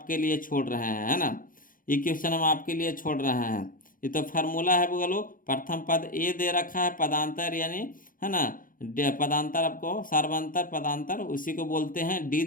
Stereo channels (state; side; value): late; right; 0.40 ms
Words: लिए छोड़ रहे हैं, है ना। ये क्वेश्चन हम आपके लिए छोड़ रहे हैं। ये तो फार्मूला है बोलो, प्रथम पद ए दे रखा है, पदांतर यानी, है ना, पदांतर आपको सार्वंतर पदांतर उसी को बोलते हैं, डी